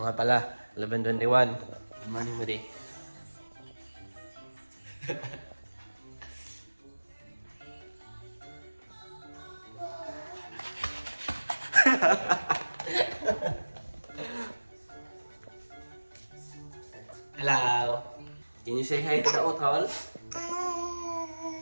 nga pala, 11:21. Good morning mo di. Hello! Can you say hi to the utol?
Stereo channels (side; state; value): both; inverted; correlation -1.00